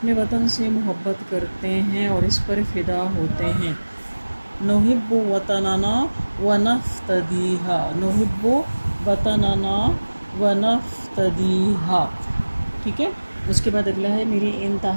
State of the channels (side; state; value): both; inverted; correlation -1.00